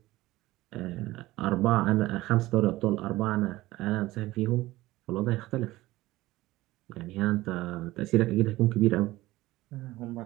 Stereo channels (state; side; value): quieter; left; 17.9 dB